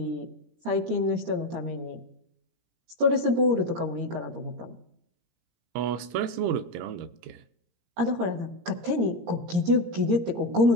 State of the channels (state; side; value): late; left; 17 ms